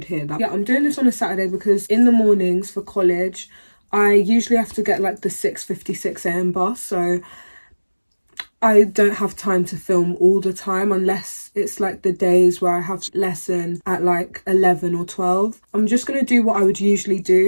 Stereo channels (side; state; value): both; inverted; correlation -1.00